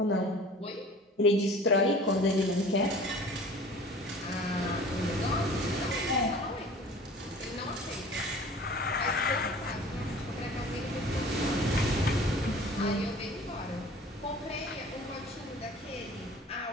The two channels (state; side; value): normal; both; correlation 0.45